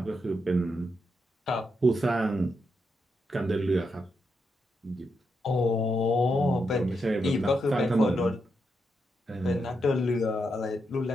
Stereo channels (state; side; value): normal; both; correlation 0.83